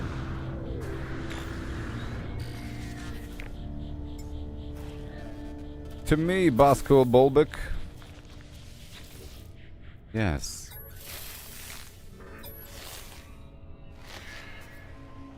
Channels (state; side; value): identical; both; correlation 1.00